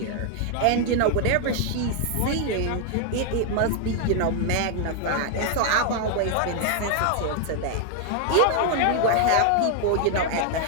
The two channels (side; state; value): both; different; correlation 0.00